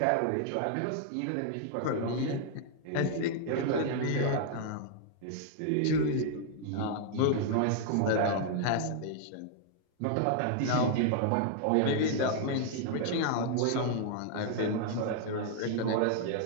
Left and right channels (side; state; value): both; different; correlation -0.01